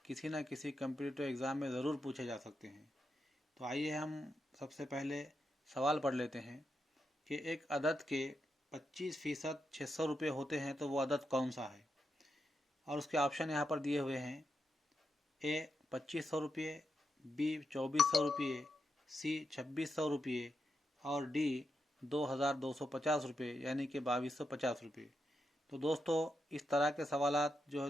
किसी न किसी कम्पिटिटिव एग्ज़ाम में ज़रूर पूछे जा सकते हैं। तो आइए हम सबसे पहले सवाल पढ़ लेते हैं कि एक अदद के 25% 600 रुपये होते हैं तो वो अदद कौन सा है। और उसके ऑप्शन यहाँ पर दिए हुए हैं। ए 2500 रुपये, बी 2400 रुपये, सी 2600 रुपये और डी 2250 रुपये यानी कि 2250 रुपये। तो दोस्तों, इस तरह के सवालात जो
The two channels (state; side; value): normal; both; correlation 0.85